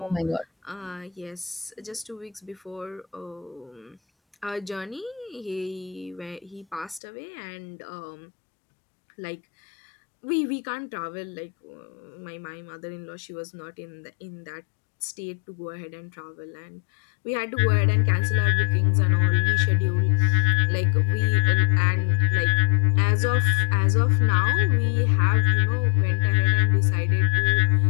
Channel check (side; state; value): right; drops out; at 7.0 s